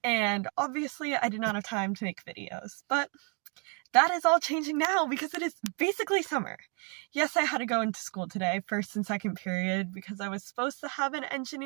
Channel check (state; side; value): quieter; left; 37.2 dB